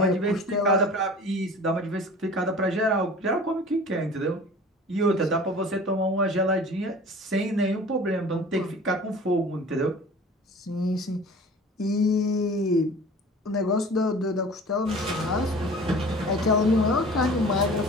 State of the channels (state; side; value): normal; both; correlation 0.42